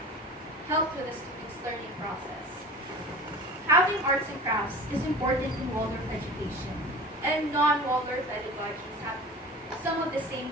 help with the students' learning process. Having arts and crafts is important in Waldorf education, and non-Waldorf pedagogies have some of the same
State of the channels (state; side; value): normal; both; correlation 0.37